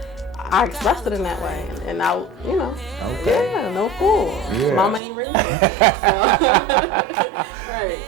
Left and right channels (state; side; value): drops out; left; at 5.0 s